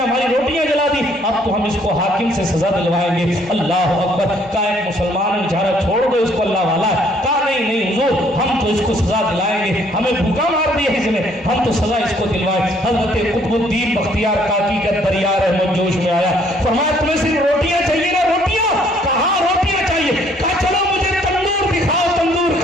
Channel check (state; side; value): normal; both; correlation 0.64